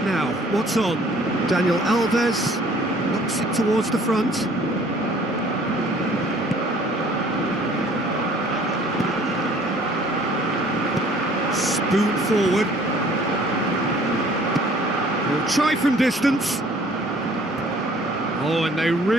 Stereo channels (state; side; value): normal; both; correlation 0.55